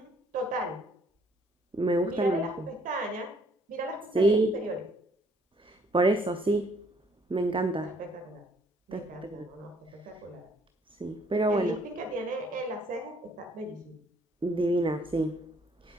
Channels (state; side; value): normal; both; correlation 0.64